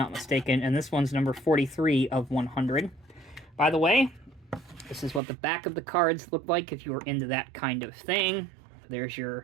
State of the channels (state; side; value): drops out; left; at 5.2 s